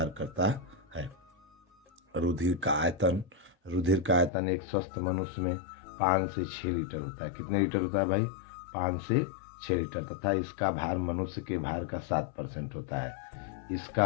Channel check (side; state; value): right; drops out; at 4.3 s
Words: करता है। रुधिर का आयतन एक स्वस्थ मनुष्य में 5 से 6 लीटर होता है। कितने लीटर होता है भाई? 5 से 6 लीटर। तथा इसका भार मनुष्य के भार का 7% होता है।